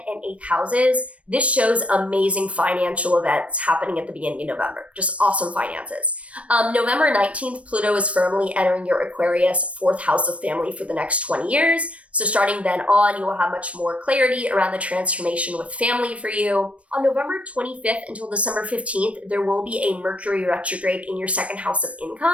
and 8th houses. This shows amazing financial events happening at the beginning of November. Just awesome finances. November 19th, Pluto is firmly entering your Aquarius 4th house of family for the next 20 years. So starting then on, you will have much more clarity around the transformation with family for you. On November 25th until December 15th, there will be a Mercury retrograde in your 2nd house of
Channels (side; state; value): left; late; 0.063 ms